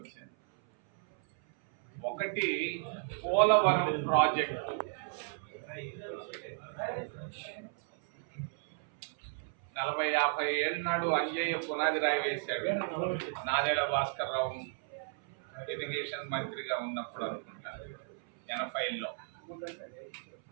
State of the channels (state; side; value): silent; left; 55 dB below the other